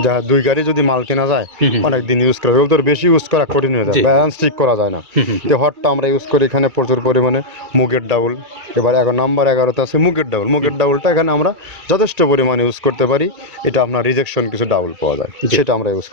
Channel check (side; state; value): left; late; 2.3 ms